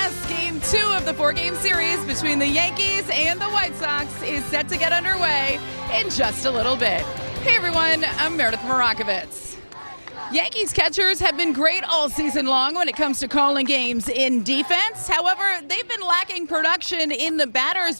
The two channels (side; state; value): both; inverted; correlation -1.00